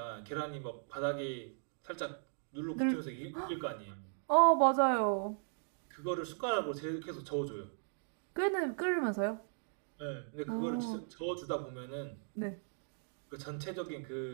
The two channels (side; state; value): left; silent; digital silence